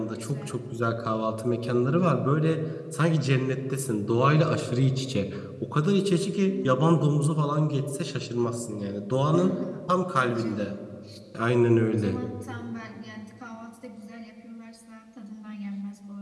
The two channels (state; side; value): identical; both; correlation 1.00